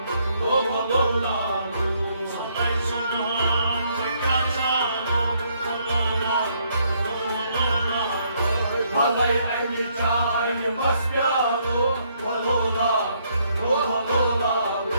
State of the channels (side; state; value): both; inverted; correlation -0.70